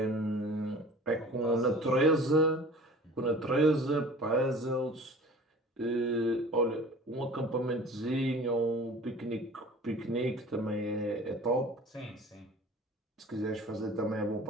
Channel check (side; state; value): both; normal; correlation 0.44